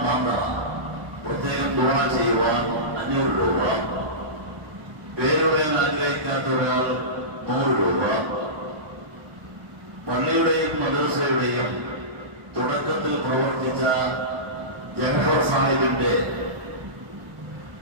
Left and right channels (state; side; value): late; left; 1.0 ms